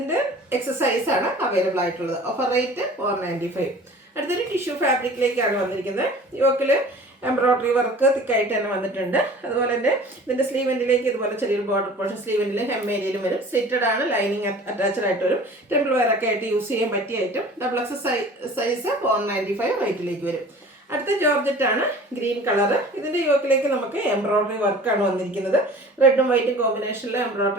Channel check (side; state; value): both; normal; correlation 0.44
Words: എക്സസൈസ് ആണ് അവൈലബിൾ ആയിട്ടുള്ളത്. Offer rate 495. അടുത്തൊരു ടിഷ്യൂ ഫാബ്രിക്കിലേക്കാണ് വന്നിരിക്കുന്നത്. യോക്കിൽ എംബ്രോയിഡറി വർക്ക് തിക്കായിട്ട് തന്നെ വന്നിട്ടുണ്ട്. അതുപോലെ തന്നെ ഇതിൻ്റെ സ്ലീവെൻറ്റിലേക്ക് ഇതുപോലെ ചെറിയൊരു ബോർഡർ പോർഷൻ സ്ലീവെൻറ്റിലും ഹെം ഏരിയയിലും വരും. സ്ലിറ്റഡ് ആണ്, ലൈനിങ് അറ്റാച്ച്ഡ് ആയിട്ട് വരും. ടെമ്പിൾ വെയർ ഒക്കെ ആയിട്ട് യൂസ് ചെയ്യാൻ പറ്റിയ ഐറ്റം. ഡബിൾ എക്സ് സൈസ് 495 റേറ്റിലേക്ക് വരും. അടുത്ത ജോർജറ്റ് ആണ്, ഗ്രീൻ കളർ. ഇതിൻ്റെ യോക്കിലേക്ക് നമുക്ക് എംബ്രോയിഡറി വർക്കാണ് വന്നിരിക്കുന്നത്. റെഡും വൈറ്റും കോമ്പിനേഷനിൽ